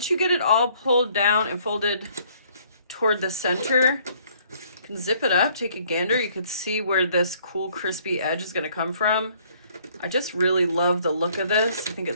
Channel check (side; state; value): both; inverted; correlation -0.61